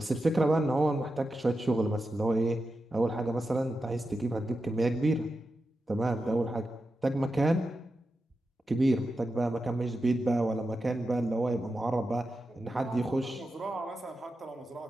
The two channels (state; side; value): normal; both; correlation 0.90